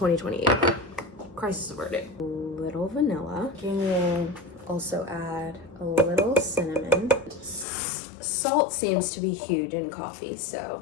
Crisis averted. A little vanilla. We'll also add a little cinnamon. Salt seems to be huge in coffee,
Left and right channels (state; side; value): drops out; right; at 7.7 s